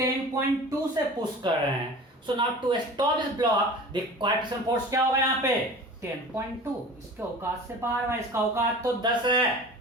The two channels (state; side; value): normal; both; correlation 0.39